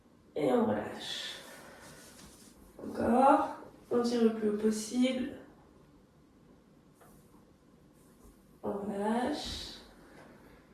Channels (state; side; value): identical; both; correlation 1.00